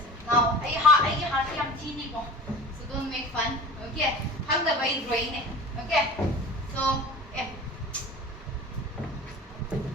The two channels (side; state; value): both; normal; correlation 0.38